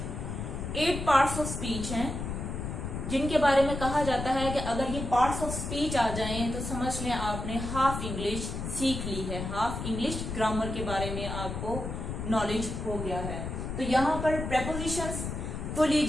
8 parts of speech हैं जिनके बारे में कहा जाता है कि अगर ये पार्ट्स ऑफ स्पीच आ जाएं तो समझ लें आपने हाफ इंग्लिश सीख ली है, हाफ इंग्लिश ग्रामर के बारे में आपको नॉलेज हो गया है। तो यहाँ पर प्रेपोजिशंस को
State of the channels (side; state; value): left; noise; rumble, 5 dB below the sound